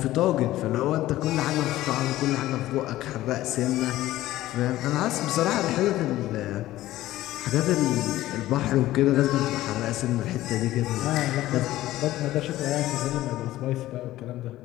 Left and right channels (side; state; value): right; quieter; 15.5 dB